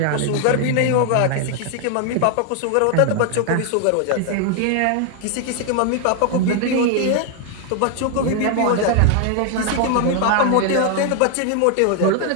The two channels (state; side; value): different; both; correlation 0.00